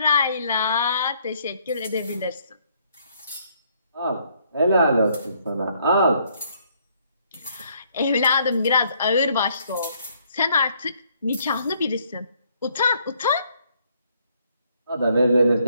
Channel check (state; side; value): inverted; both; correlation -0.67